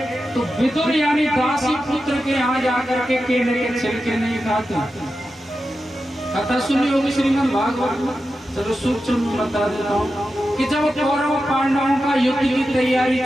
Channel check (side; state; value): both; normal; correlation 0.91